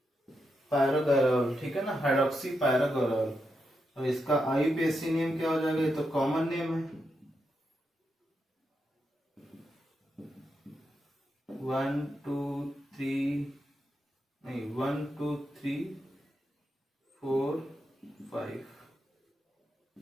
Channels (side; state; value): both; normal; correlation 0.84